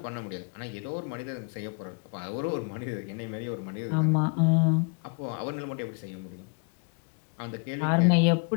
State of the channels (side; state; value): right; quieter; 36.0 dB